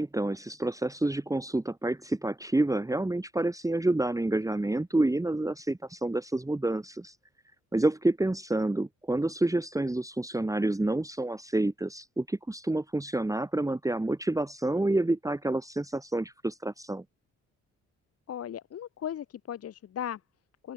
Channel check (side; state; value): both; normal; correlation 0.89